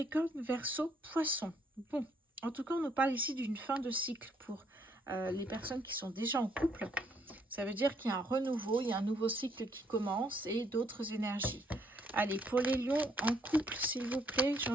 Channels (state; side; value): normal; both; correlation 0.70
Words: Verseau, Poisson. Bon, en tout cas, on nous parle ici d'une fin de cycle pour les personnes qui sont déjà en couple. Ça veut dire qu'il y a un renouveau, il y a un nouveau cycle qui commence et d'autres énergies. Allez, pour les lions en couple, s'il vous plaît,